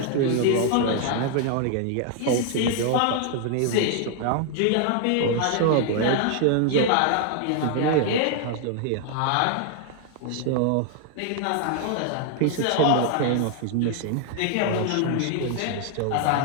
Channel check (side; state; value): both; different; correlation 0.00